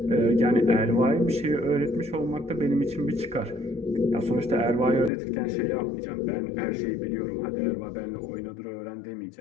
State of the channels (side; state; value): right; drops out; at 5.1 s